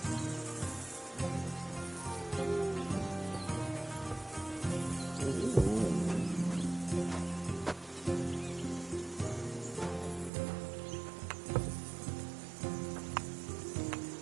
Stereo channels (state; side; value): drops out; left; at 10.3 s